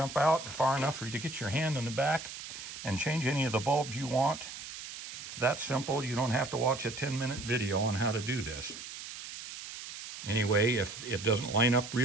out far enough for you to get your hand in the back and change any of the bulbs you want. It's that simple. You don't have to watch a 10-minute video on how to do this. Anyway, if it doesn't line up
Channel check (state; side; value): noise; right; hiss, 10 dB below the sound